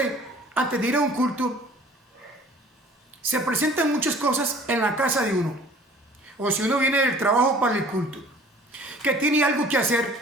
antes de ir a un culto, se presentan muchas cosas en la casa de uno. O si uno viene del trabajo para el culto, que tiene algo que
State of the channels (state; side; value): normal; both; correlation 0.50